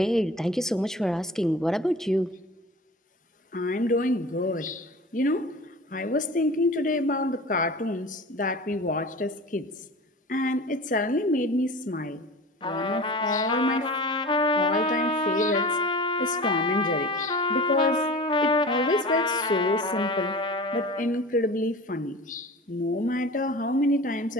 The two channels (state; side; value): normal; both; correlation 0.37